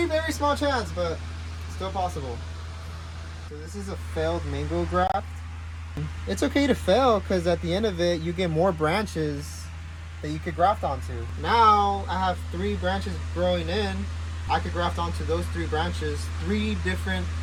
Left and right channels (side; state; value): both; identical; correlation 1.00